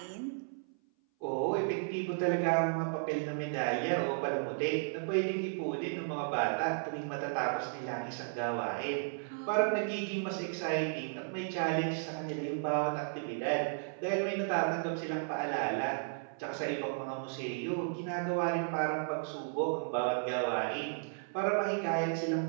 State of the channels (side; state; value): left; silent; 55 dB below the other